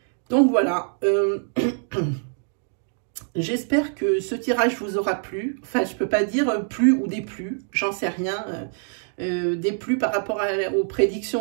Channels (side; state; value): left; silent; 62 dB below the other